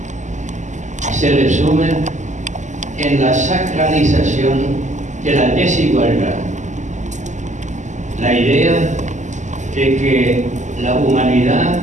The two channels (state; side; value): late; left; 0.34 ms